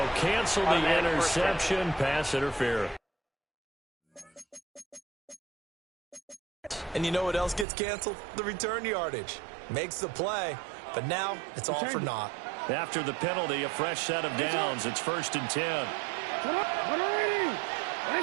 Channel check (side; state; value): left; drops out; at 7.7 s